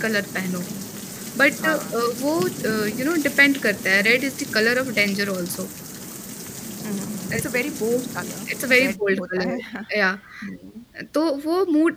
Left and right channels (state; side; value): identical; both; correlation 1.00